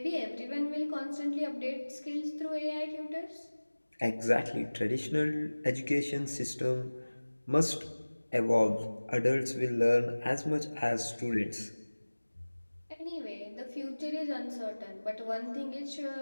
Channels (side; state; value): both; inverted; correlation -1.00